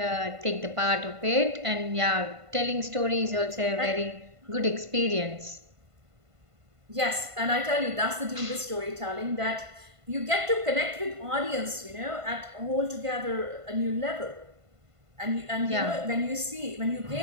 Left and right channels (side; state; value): left; late; 1.5 ms